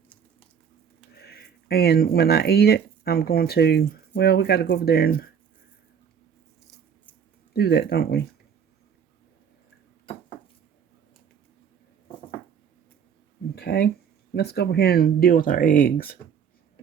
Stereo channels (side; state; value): left; quieter; 7.4 dB